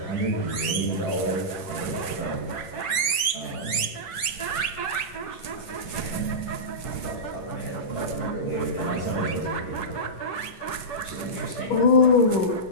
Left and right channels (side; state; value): right; late; 10 ms